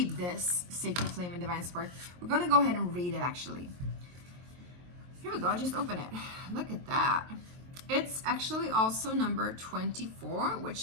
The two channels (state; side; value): late; left; 23 ms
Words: this sacred flame and divine spark. We're going to go ahead and read it, actually. Here we go, just open it. Look at that. It's actually also number 24,